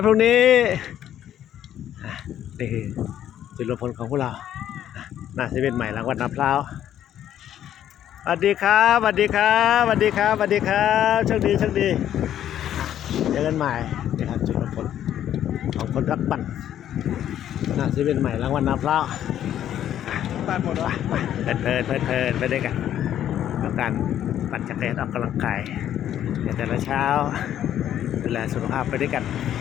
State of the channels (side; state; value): right; quieter; 10.9 dB